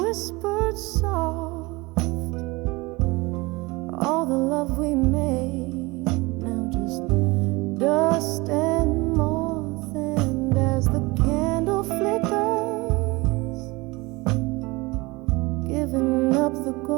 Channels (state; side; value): quieter; left; 23.5 dB